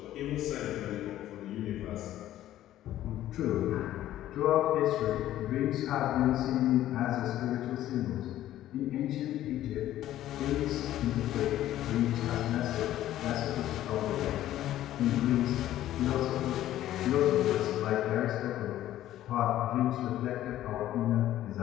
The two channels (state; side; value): quieter; right; 13.2 dB